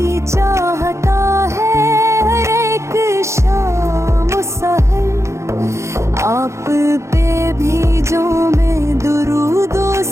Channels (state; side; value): late; left; 0.14 ms